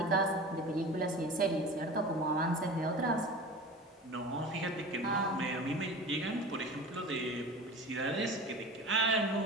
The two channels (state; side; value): normal; both; correlation 0.35